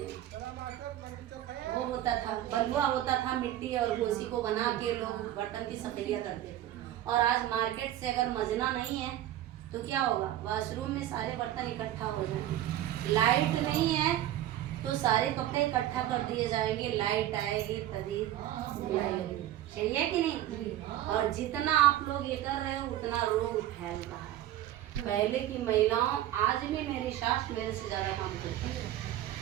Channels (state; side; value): quieter; left; 13.0 dB